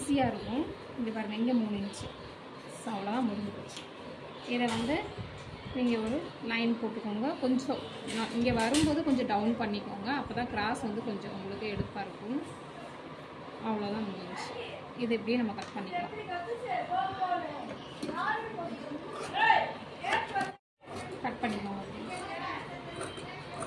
இருக்கும். இங்கே பாருங்கள், இங்கே 3 இன்ச்சு. ஸோ அவ்வளோதான், முடிஞ்சு போச்சு. இதை வந்து நீங்கள் ஒரு லைன் போட்டுக்கோங்க. கொஞ்சம் இங்கே வரும்போது கொஞ்சம் டவுன் பண்ணிக்கோங்க. அப்போ தான் கிராஸ் வந்து கொஞ்சம் உங்களுக்கு எடுப்பாக இருக்கும். அவ்வளோதான், முடிஞ்சு. இது இப்படியே நம்ம கட் பண்ணிக்கலாம். கட் பண்ணிக்கோங்க.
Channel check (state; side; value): identical; both; correlation 1.00